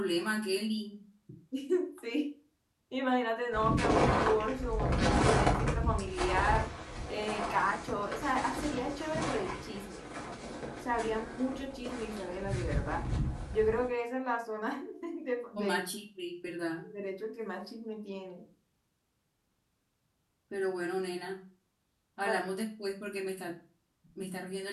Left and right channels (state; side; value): identical; both; correlation 1.00